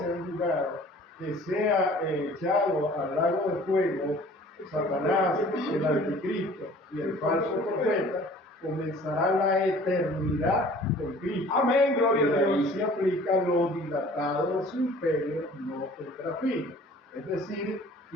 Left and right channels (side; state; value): both; normal; correlation 0.50